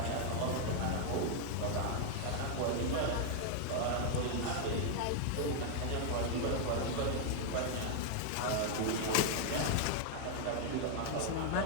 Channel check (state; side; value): different; both; correlation 0.00